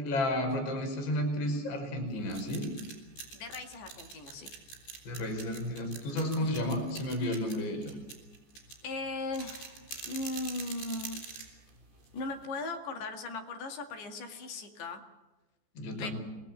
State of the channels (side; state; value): right; late; 14 ms